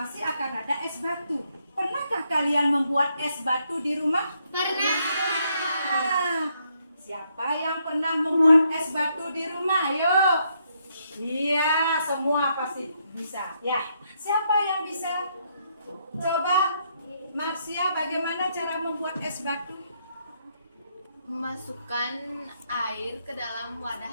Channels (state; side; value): inverted; both; correlation -0.75